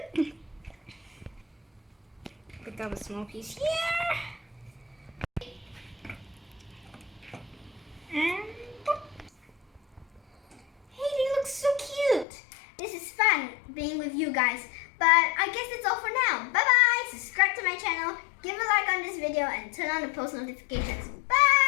cute? Pick up a small piece here. And hey, they look so cute. This is fun being with you guys. But I guess that's all for now. Bye bye. Subscribe to my channel, give a like on this video, and turn on the post notifications.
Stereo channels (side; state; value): right; drops out; at 12.2 s